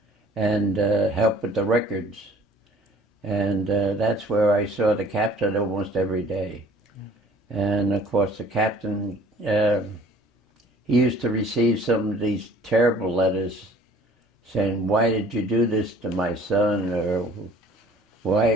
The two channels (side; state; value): both; normal; correlation 0.52